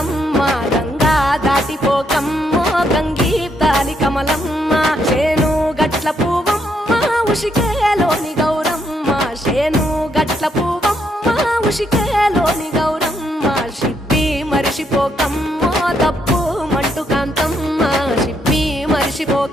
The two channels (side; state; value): both; normal; correlation 0.75